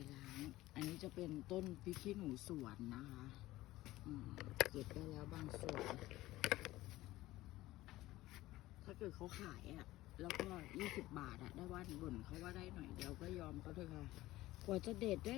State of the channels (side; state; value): right; quieter; 17.0 dB